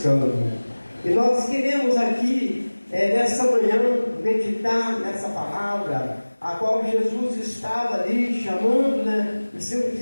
E nós queremos aqui, nessa manhã, meditar nessa palavra, a qual Jesus estava ali chamando, os seus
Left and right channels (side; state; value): both; inverted; correlation -1.00